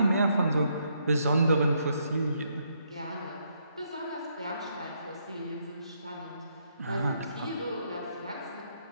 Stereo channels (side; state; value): both; inverted; correlation -0.75